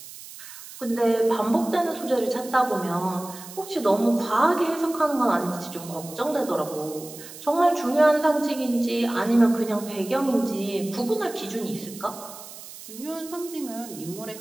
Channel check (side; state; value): right; noise; hiss, 15 dB below the sound